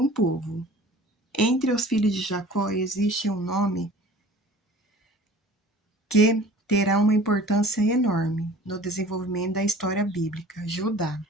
povo. Entre os filhos de Jacó existe um nome que terá uma importância enorme no desenvolvimento da história bíblica: Judá.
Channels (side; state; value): both; normal; correlation 0.46